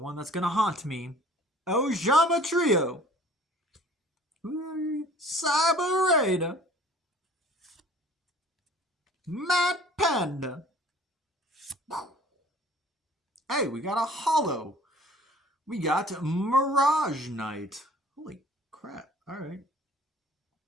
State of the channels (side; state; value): both; normal; correlation 0.50